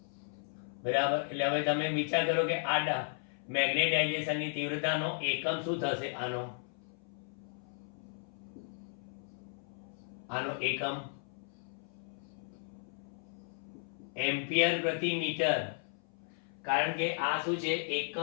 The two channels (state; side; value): silent; right; 54 dB below the other